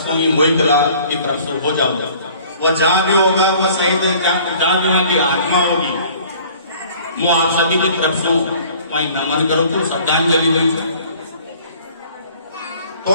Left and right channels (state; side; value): inverted; both; correlation -0.52